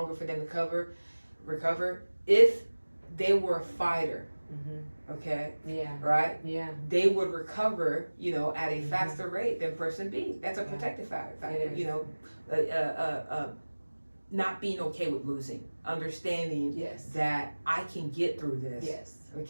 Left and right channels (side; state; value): both; inverted; correlation -1.00